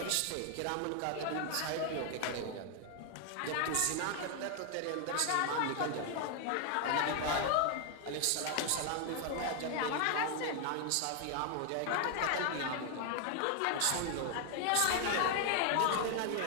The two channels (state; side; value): different; both; correlation 0.00